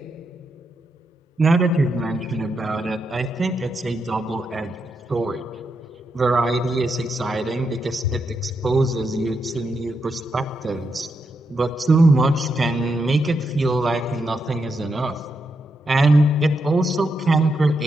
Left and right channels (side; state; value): both; normal; correlation 0.83